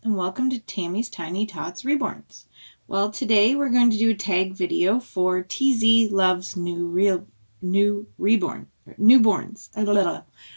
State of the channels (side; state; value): both; inverted; correlation -1.00